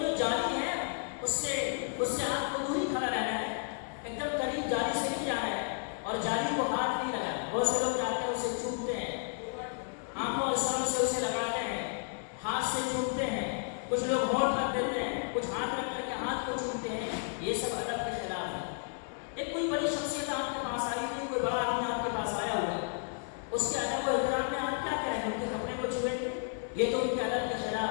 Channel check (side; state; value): right; silent; 56 dB below the other